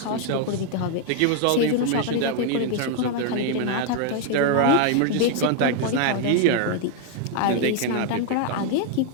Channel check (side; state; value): both; different; correlation 0.00